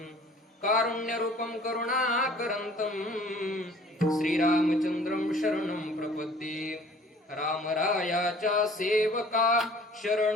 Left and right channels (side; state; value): both; normal; correlation 0.51